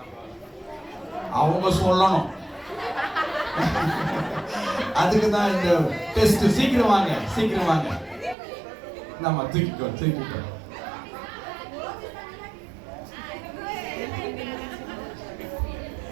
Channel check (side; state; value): left; drops out; at 8.3 s